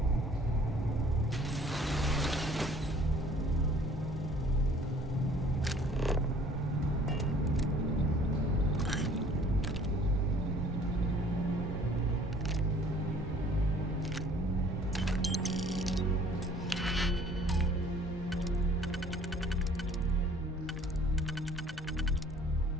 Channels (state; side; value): normal; both; correlation 0.54